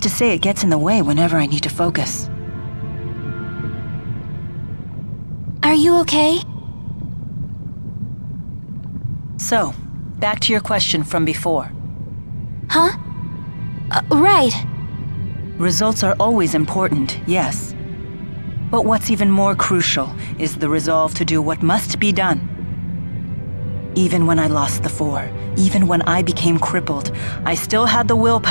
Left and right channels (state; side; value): inverted; both; correlation -1.00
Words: to say it gets in the way whenever I need to focus. Are you okay? So, back to your question from before. Huh? Right. Results are always important, yes. But what's even more crucial is the resolve to do what must be done. Even when I lost the Four, even when I became crippled, I still had the